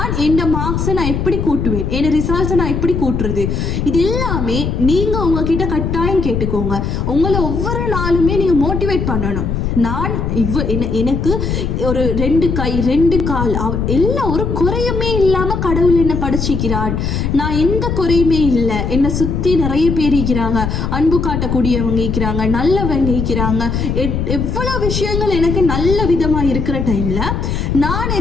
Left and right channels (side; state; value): left; noise; rumble, 1 dB below the sound